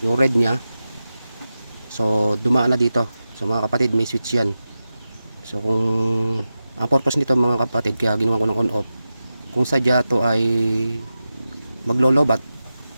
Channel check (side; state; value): both; inverted; correlation -0.93